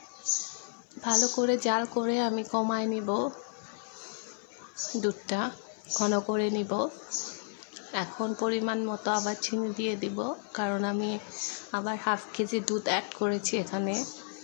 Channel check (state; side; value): silent; right; 55 dB below the other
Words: ভালো করে জাল করে আমি কমায় নিব, দুধটা ঘন করে নিব। এখন পরিমাণ মতো আবার চিনি দিয়ে দিব, কারণ আমি আবার হাফ কেজি দুধ অ্যাড করেছি এখানে।